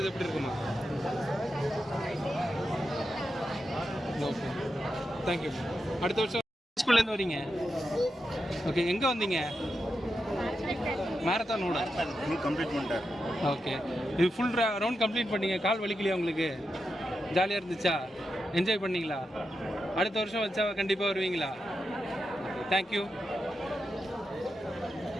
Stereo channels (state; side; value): normal; both; correlation 0.87